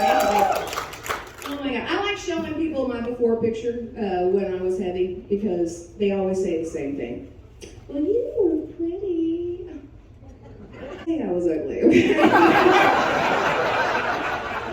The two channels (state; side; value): identical; both; correlation 1.00